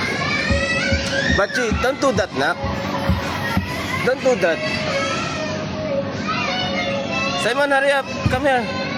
Bachi, don't do that, nak. Don't do that. Simon, hurry up. Come here.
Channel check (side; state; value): both; identical; correlation 1.00